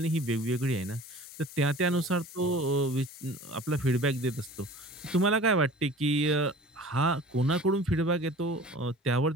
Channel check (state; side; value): normal; both; correlation 0.43